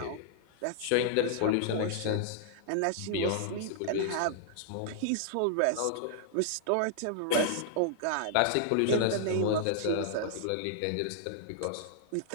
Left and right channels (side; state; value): both; different; correlation -0.01